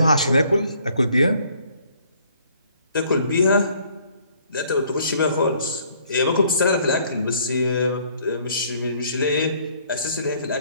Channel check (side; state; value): both; inverted; correlation -0.62